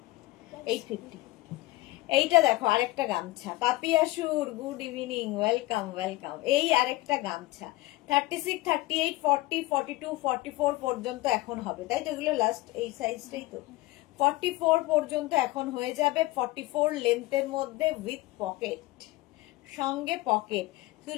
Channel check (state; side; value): quieter; right; 19.3 dB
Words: 850। এইটা দেখো আরেকটা গামছা, পাপিয়াসুর গুড ইভিনিং, ওয়েলকাম ওয়েলকাম। এই আরেকটা গামছা 36, 38, 40, 42, 44 পর্যন্ত এখন হবে, তাই তো? এগুলো লাস্ট এই সাইজটাই তো, 44 পর্যন্ত এখন হয়ে যাবে। 44 লেন্থের মধ্যে উইথ পকেট, সঙ্গে pocket.